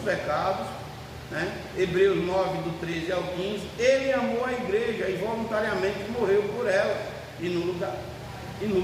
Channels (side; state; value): both; identical; correlation 1.00